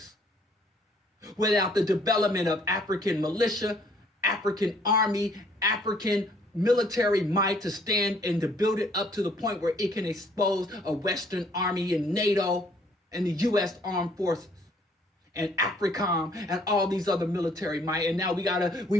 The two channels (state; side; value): normal; both; correlation 0.62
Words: without the development of African militia, African army, African military might to stand and to build it up to the point where it can expose a Western army and NATO and the U.S. Armed Forces and AFRICOM and all these other military might. And now